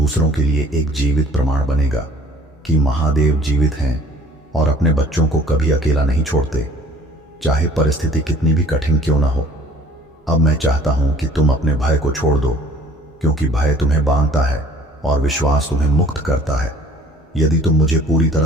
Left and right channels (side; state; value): both; normal; correlation 0.52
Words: के लिए एक जीवित प्रमाण बनेगा कि महादेव जीवित हैं और अपने बच्चों को कभी अकेला नहीं छोड़ते, चाहे परिस्थिति कितनी भी कठिन क्यों ना हो। अब मैं चाहता हूं कि तुम अपने भय को छोड़ दो, क्योंकि भय तुम्हें बांधता है और विश्वास तुम्हें मुक्त करता है। यदि तुम मुझे पूरी